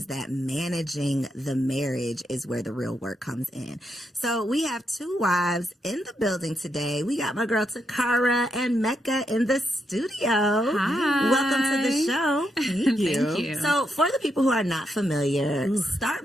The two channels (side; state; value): both; normal; correlation 0.81